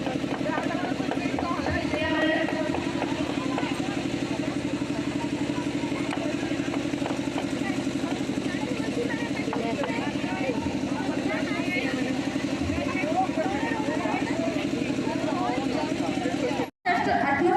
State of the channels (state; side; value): identical; both; correlation 1.00